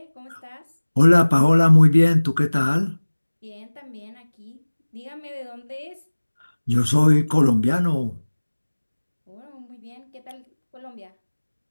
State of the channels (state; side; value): inverted; both; correlation -1.00